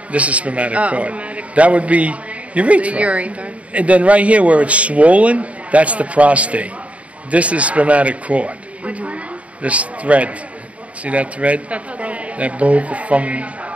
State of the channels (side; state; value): left; late; 0.066 ms